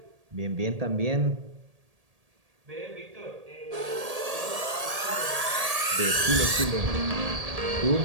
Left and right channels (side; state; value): left; late; 1.8 ms